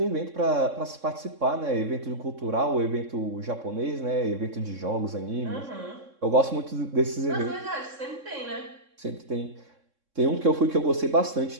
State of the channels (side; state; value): left; late; 3.6 ms